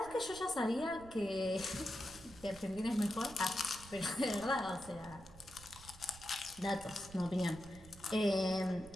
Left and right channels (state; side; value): noise; right; rumble, 19 dB below the sound